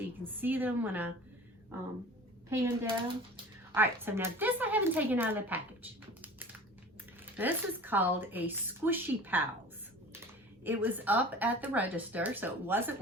you can see them when I pan down. All right, so now this I haven't taken out of the package. This is called a Squishy Pals. It was up at the register, so it wasn't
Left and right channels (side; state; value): both; normal; correlation 0.41